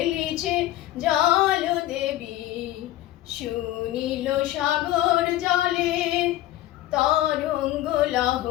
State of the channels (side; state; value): right; quieter; 14.8 dB